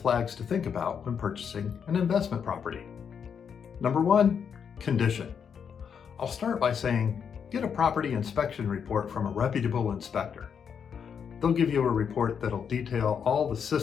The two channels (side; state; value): right; quieter; 7.2 dB